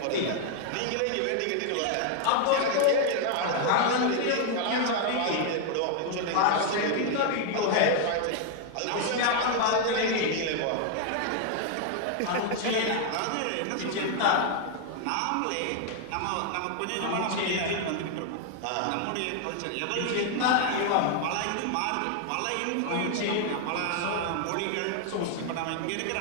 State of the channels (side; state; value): both; different; correlation 0.00